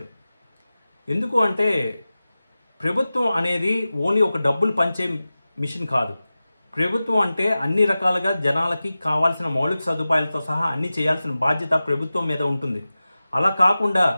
ఎందుకు అంటే ప్రభుత్వం అనేది ఓన్లీ ఒక డబ్బులు పంచే మిషన్ కాదు. ప్రభుత్వం అంటే అన్ని రకాలుగా జనాలకి కావాల్సిన మౌలిక సదుపాయాలతో సహా అన్ని చేయాల్సిన బాధ్యత ప్రభుత్వం మీద ఉంటుంది. అలా కాకుండా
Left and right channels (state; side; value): inverted; both; correlation -0.96